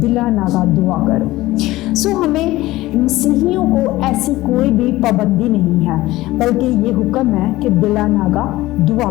नागा दुआ करो। हमें मसीहियों को ऐसी कोई भी पाबंदी नहीं है, बल्कि ये हुक्म है कि बिला नागा दुआ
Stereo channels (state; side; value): quieter; right; 17.6 dB